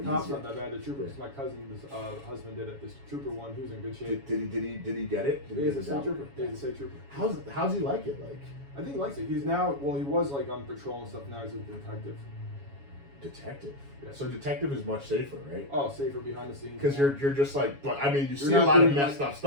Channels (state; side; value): late; left; 7.2 ms